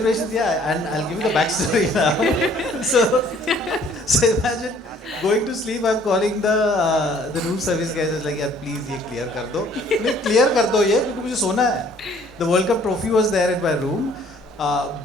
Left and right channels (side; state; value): both; normal; correlation 0.58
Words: Yeah, and I'll give you the backstory now. So imagine going to sleep. I'm calling the room service guys. It's like, यार please ये clear कर दो. नहीं clear कर दो ये क्योंकि मुझे सोना है. The World Cup trophy was there in my room,